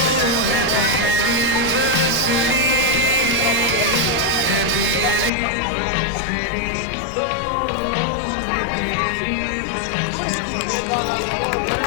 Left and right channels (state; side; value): drops out; right; at 5.3 s